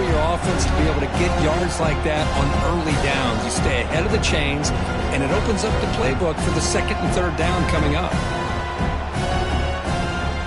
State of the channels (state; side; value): identical; both; correlation 1.00